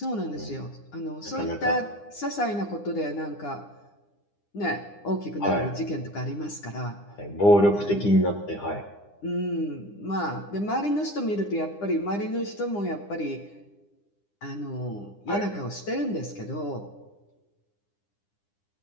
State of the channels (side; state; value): right; late; 9.9 ms